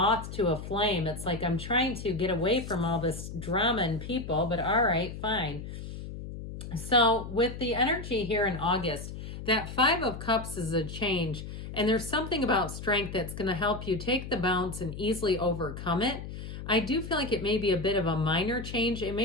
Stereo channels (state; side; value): noise; left; hum, 9 dB below the sound